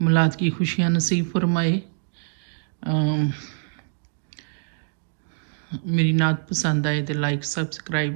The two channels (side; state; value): left; silent; digital silence